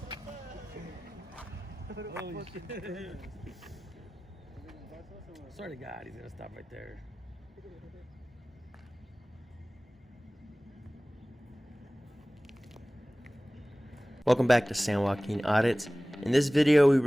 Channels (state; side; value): normal; both; correlation 0.98